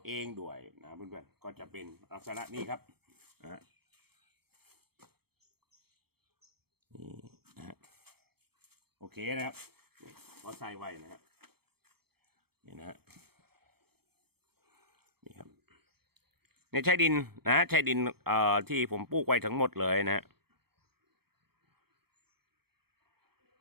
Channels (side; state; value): left; late; 0.96 ms